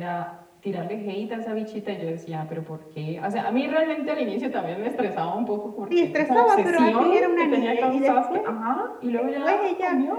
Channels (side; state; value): both; identical; correlation 1.00